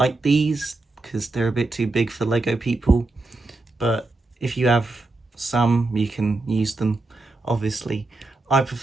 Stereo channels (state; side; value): quieter; left; 3.1 dB